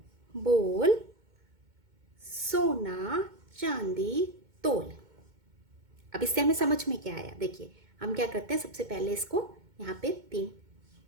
बोल सोना चांदी तोल। अब इससे हमें समझ में क्या आया? देखिए, हम क्या करते हैं, सबसे पहले इसको यहाँ पे 3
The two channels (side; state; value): left; late; 2.2 ms